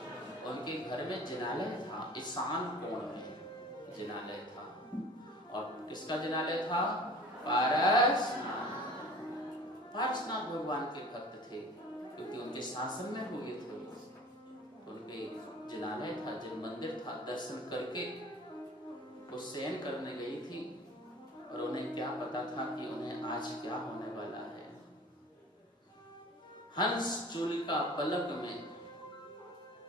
उनके घर में जिनालय था, ईशान कोण में जिनालय था। और किसका जिनालय था? पारसनाथ भगवान के भक्त थे, क्योंकि उनके शासन में हुए थे। उनके जिनालय था, जिन मंदिर था, दर्शन करके वो शयन करने गई थी। और उन्हें क्या पता था कि उन्हें आज क्या होने वाला है। हंस चूलिका फलक में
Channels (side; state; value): both; normal; correlation 0.44